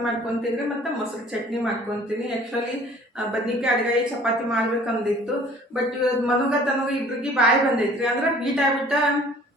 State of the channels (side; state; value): both; normal; correlation 0.52